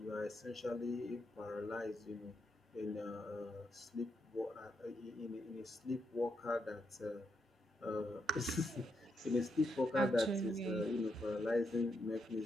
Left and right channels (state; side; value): normal; both; correlation 0.81